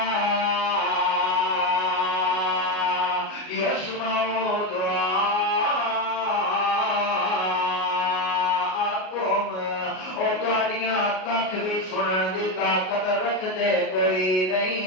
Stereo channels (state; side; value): late; right; 37 ms